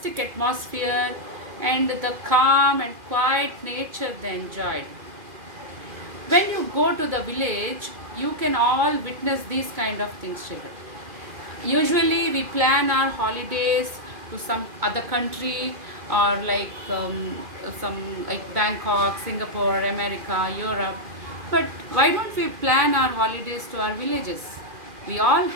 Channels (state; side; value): late; left; 2.4 ms